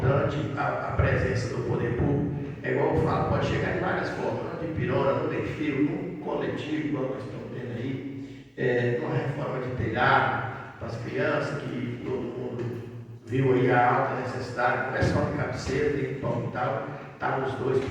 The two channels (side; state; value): both; identical; correlation 1.00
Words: a presença do poder público. É igual eu falo, pode chegar de várias formas, não de pirona, no perfil, no coletivo, igual nós estamos vendo aí, numa reforma de telhado, para as crianças, que todo mundo viu aí a alta necessidade, não é só de cabeceira, tem que pão e tal, estavam os dois